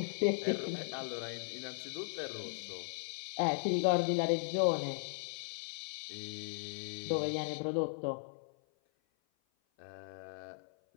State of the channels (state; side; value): silent; right; 53 dB below the other